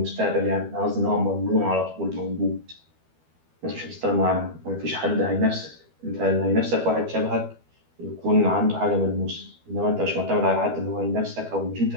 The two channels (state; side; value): late; left; 12 ms